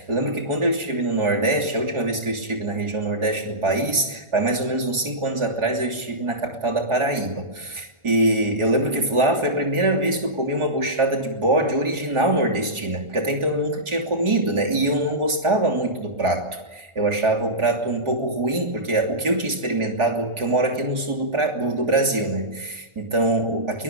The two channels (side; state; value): left; late; 1.4 ms